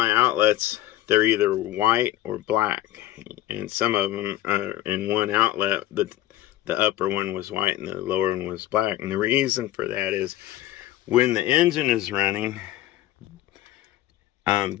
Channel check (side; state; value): right; quieter; 14.5 dB